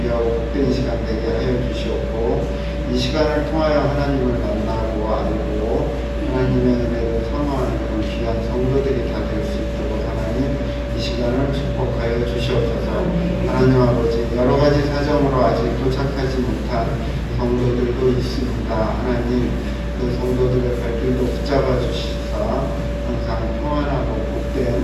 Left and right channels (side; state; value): both; identical; correlation 1.00